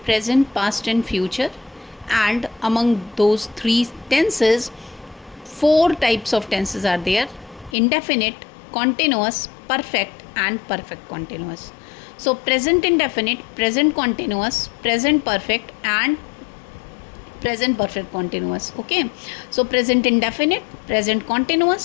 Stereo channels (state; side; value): drops out; right; at 7.8 s